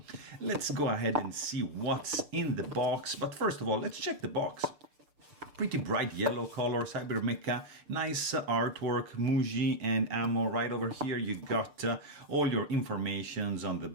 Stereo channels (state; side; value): late; left; 6.7 ms